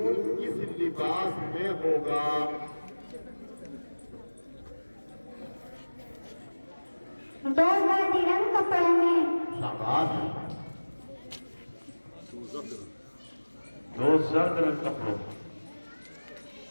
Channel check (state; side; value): inverted; both; correlation -1.00